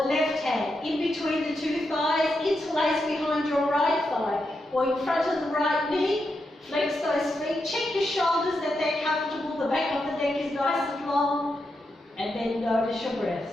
the left hand in between the two thighs, interlace behind your right thigh, or in front of the right knee, flex those feet, check your shoulders that they're comfortable, the back of the neck is nice and long, and then notice your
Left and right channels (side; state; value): both; normal; correlation 0.85